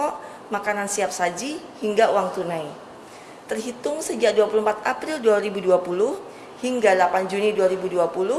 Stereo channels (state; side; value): identical; both; correlation 1.00